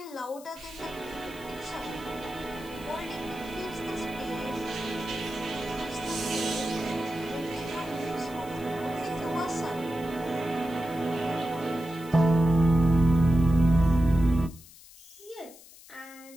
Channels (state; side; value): noise; left; hiss, 21 dB below the sound